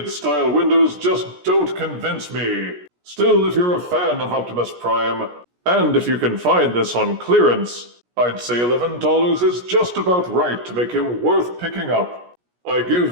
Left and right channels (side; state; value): left; late; 17 ms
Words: style windows just don't convince me. Still, if you're a fan of Optimus Prime, and if you can find this on clearance, I'd say $11 is just about right to make him worth picking up. I